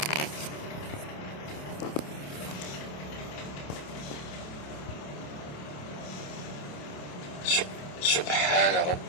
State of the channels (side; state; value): right; late; 28 ms